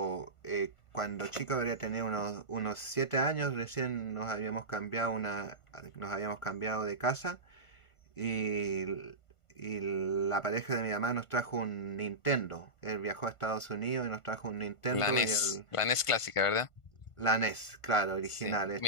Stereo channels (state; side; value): late; right; 1.5 ms